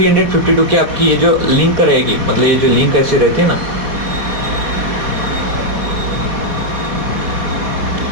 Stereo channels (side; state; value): left; late; 4.1 ms